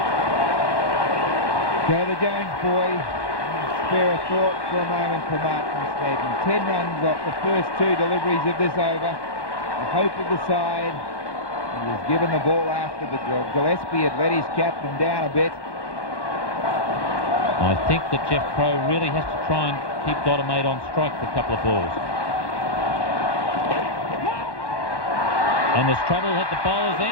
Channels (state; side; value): late; right; 1.1 ms